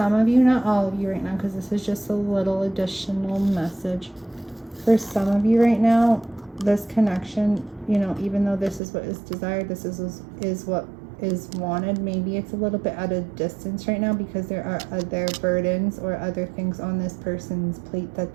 of you, not all of you right now, because this is just a little additional message. For some of you right now, this connection, you know, even though this is what is desired, this is what is wanted, maybe it's a little bit at a distance right now because there are other burdens or other things on this person's plate that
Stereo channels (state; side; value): drops out; left; at 8.8 s